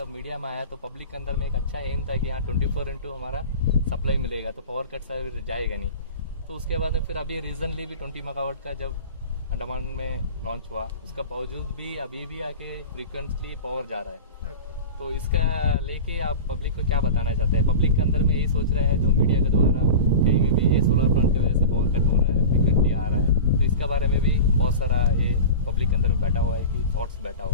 मीडिया में आया तो पब्लिक के अंदर में एक अच्छा एम था कि यहाँ 24/2 हमारा सप्लाई मिलेगा, तो पावर कट जाएगा नहीं। तो उसके बाद फिर अभी रीजनली भी 20 मेगावाट का जब अंडमान में लॉन्च हुआ, उसका बावजूद भी अभी भी आके फ्रीक्वेंटली पावर जा रहा है। तो इसका लेके आप पब्लिक को क्या बताना चाहते हैं? पब्लिक के अंदर में ये सोच रहा है जो मीडिया के द्वारा कहीं में भी ये सोलर प्लांट की वजह से पावर कट हो रहा है, फ्रीक्वेंटली आ रहा है, तो इसका बारे में भी बहुत सारा ये पब्लिक के अंदर में बैठा हुआ है कि थॉट्स बैठा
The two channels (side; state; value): both; inverted; correlation -0.31